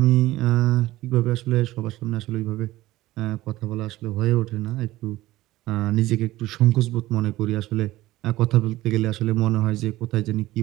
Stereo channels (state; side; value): quieter; left; 16.9 dB